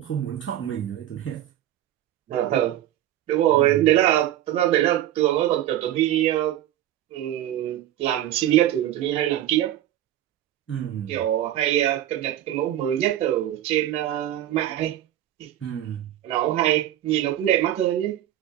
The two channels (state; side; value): quieter; left; 12.6 dB